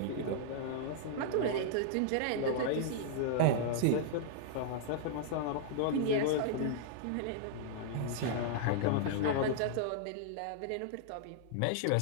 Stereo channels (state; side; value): different; both; correlation -0.01